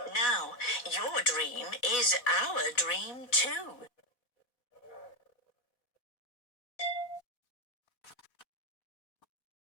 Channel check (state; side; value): late; right; 4.0 ms